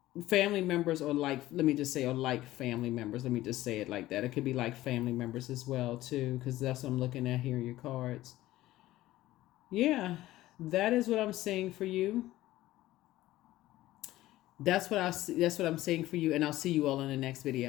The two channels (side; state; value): right; quieter; 15.9 dB